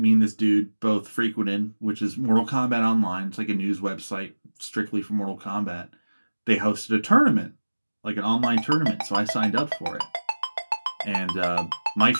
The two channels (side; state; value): both; inverted; correlation -1.00